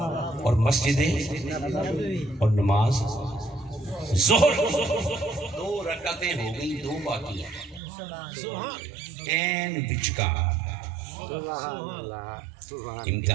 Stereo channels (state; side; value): drops out; left; at 7.8 s